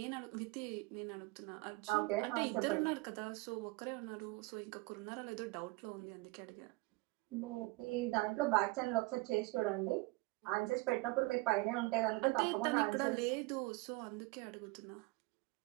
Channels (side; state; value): left; quieter; 23.6 dB